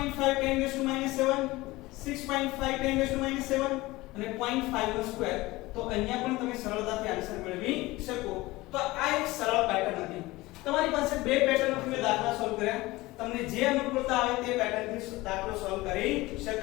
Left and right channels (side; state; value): right; quieter; 20.0 dB